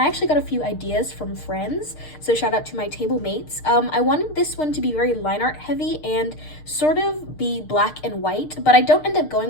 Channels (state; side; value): late; right; 6.6 ms